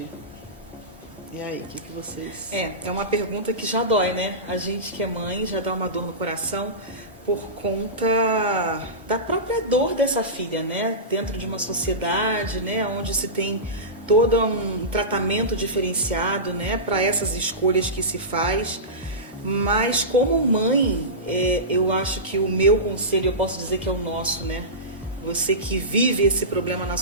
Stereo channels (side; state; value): both; normal; correlation -0.20